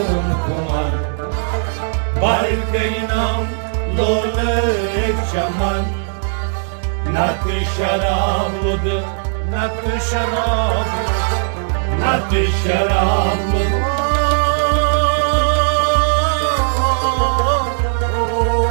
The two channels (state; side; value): silent; left; digital silence